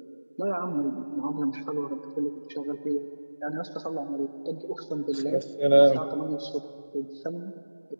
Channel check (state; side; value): inverted; both; correlation -1.00